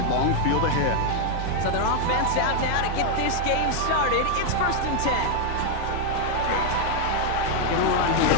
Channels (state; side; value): different; both; correlation 0.00